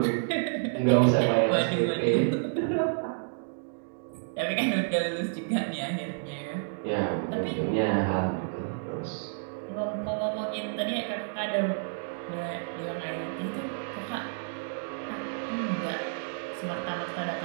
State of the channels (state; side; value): silent; left; digital silence